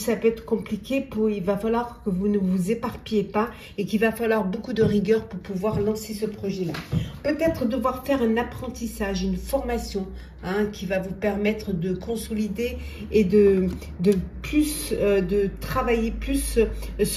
peut être compliqué il va falloir que vous ne vous éparpillez pas et qu'il va falloir beaucoup de rigueur pour pouvoir lancer ce projet-là. Peut-être devoir faire un apprentissage, une formation, hein, qui va vous permettre de consolider et de travailler plus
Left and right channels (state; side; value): identical; both; correlation 1.00